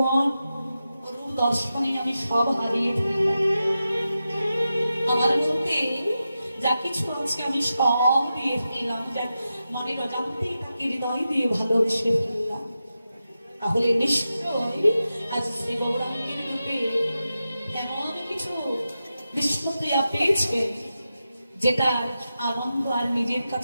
রূপ দর্শনে আমি সব হারিয়ে ফেললাম। আমার মধ্যে যা কিছু আছে আমি সব দিয়ে ফেললাম, মানে অজান্তে তাকে হৃদয় দিয়ে ভালোবেসে ফেললাম। তাহলে নিশ্চয় আজ শ্রী গৌরাঙ্গের রূপে এমন কিছু বিষ্ণুপ্রিয়া পেয়েছে যেটা আনন্দ আর নিজের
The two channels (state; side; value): inverted; both; correlation -0.91